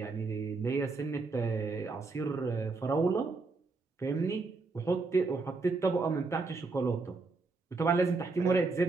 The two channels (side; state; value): left; quieter; 3.9 dB